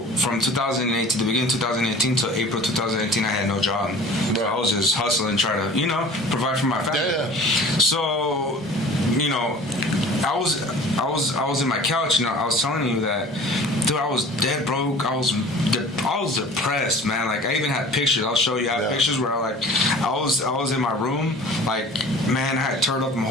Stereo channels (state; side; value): normal; both; correlation 0.44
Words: from 2008 to the beginning of 2018 to April 2018, I had no job. Right. So I was just hustling, trying to, provide for my family. Yeah. So, I was in my couch, I was telling you that, dude, I was dead broke. I was depressed, man. Like, I even had pictures. I'll show you. I have pictures where I was in my room. Like, man, I had turned up my